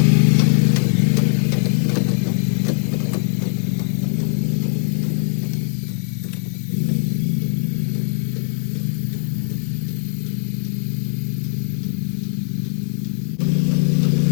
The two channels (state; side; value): silent; right; digital silence